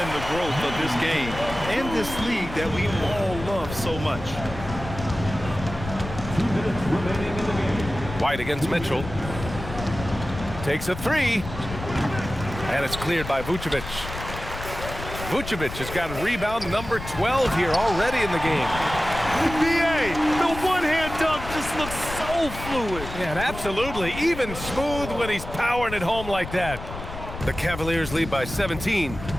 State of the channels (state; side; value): noise; left; rumble, 10 dB below the sound